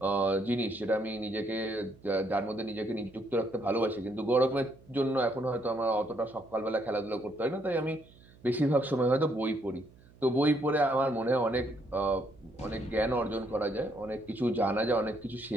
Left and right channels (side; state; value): right; noise; hum, 25 dB below the sound